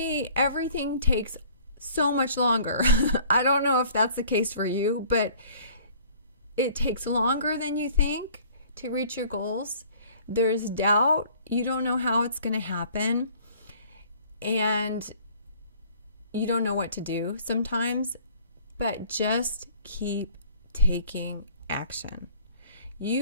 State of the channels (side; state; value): both; inverted; correlation -0.53